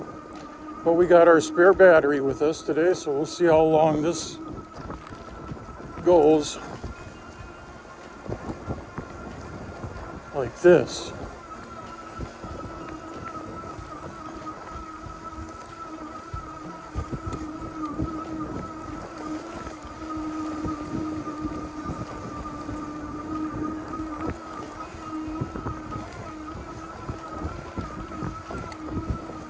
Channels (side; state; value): both; identical; correlation 1.00